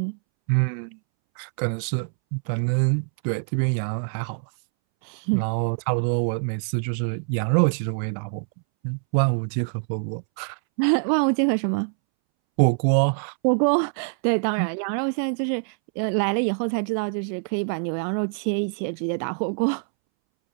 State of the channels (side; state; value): left; silent; 62 dB below the other